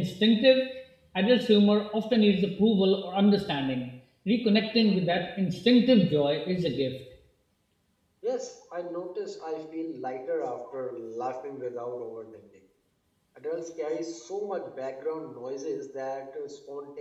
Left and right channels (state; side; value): identical; both; correlation 1.00